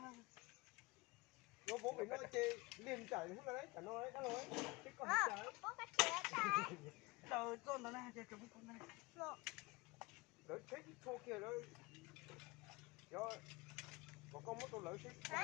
nó bố phải nói chê liền chảy không là đấy chả nói đấy đã nói chứ còn chả đâu con đó này chơi chúng con này lỡ chết thô kia đó do có con mất tôi lỡ chết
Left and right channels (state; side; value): quieter; right; 24.0 dB